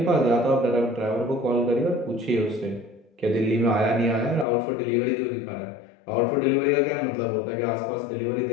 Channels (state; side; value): drops out; right; at 4.5 s